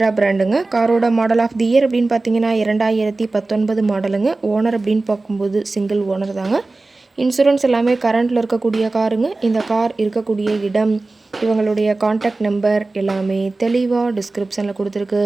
பிராண்டுங்க. காரோட மாடல் ஆஃப் தி இயர் அப்படின்னு பார்த்தீங்கன்னா 2019 மாடலுங்க. ஓனர் அப்படின்னு பார்க்கும்போது சிங்கிள் ஓனர் தாங்க. இன்சூரன்ஸ் எல்லாமே கரண்ட்டில் இருக்கக்கூடிய காருங்க. இந்த கார் இருக்கக்கூடிய இடம், இவங்களுடைய காண்டாக்ட் நம்பர் எல்லாமே தெளிவாக டிஸ்கிரிப்ஷனில் கொடுத்துருக்கு.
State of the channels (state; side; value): quieter; left; 3.3 dB